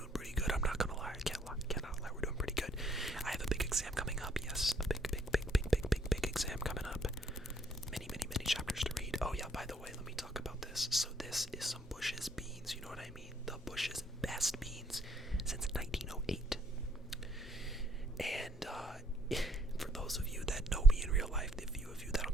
pretty good. I'm not gonna lie. Cannot lie. We're doing pretty good. I have a big exam coming up. Yes, a big exam coming up. Many chapters to read. Oh yeah, by the way, let me talk about this. So this is some Bush's beans. You know what I mean? The Bush's best beans since 1908. And for those of you that know me in real life, the few of you that'll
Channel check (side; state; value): both; normal; correlation 0.67